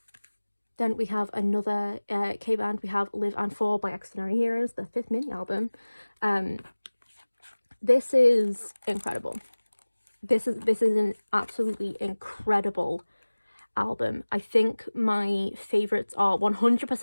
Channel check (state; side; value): inverted; both; correlation -1.00